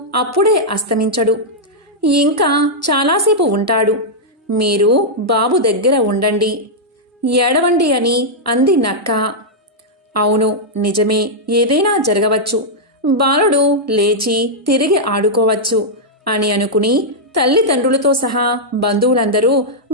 అప్పుడే అస్తమించడు, ఇంకా చాలాసేపు ఉంటాడు. మీరు బాబు దగ్గర ఉండండి, ఏడవండి అని అంది నక్క. అవును, నిజమే, ఏదైనా జరగవచ్చు. బాలుడు లేచి తిరిగి ఆడుకోవచ్చు అని అనుకుని తల్లిదండ్రులతో సహా బంధువులందరూ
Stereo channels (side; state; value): both; normal; correlation -0.07